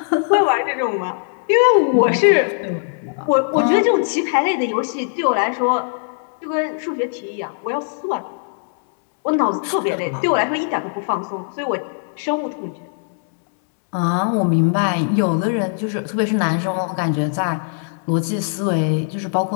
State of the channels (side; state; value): right; silent; digital silence